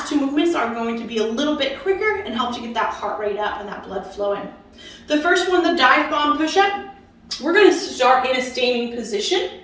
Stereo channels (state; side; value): identical; both; correlation 1.00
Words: 2 movements are going to be a little bit quicker and help to get that heart rate up and that blood flowing. The first one, the dive bomb push-up, we're going to start in a standing position.